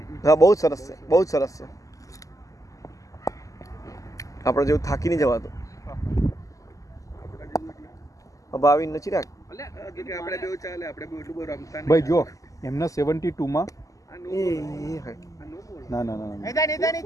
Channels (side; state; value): right; late; 0.16 ms